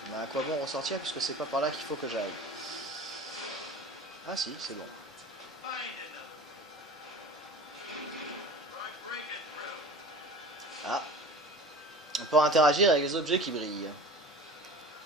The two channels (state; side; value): normal; both; correlation 0.38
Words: Mais à quoi bon ressortir puisque c'est pas par là qu'il faut que j'aille? Ah si, c'est bon. Ah. On peut interagir avec les objets qui brillent.